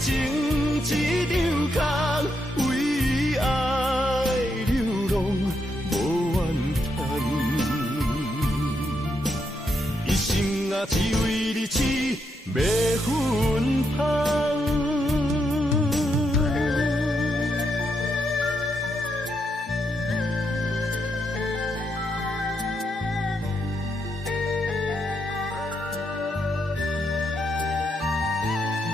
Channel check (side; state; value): both; normal; correlation 0.80